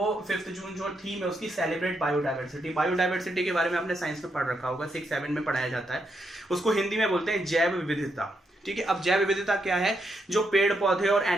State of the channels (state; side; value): normal; both; correlation 0.80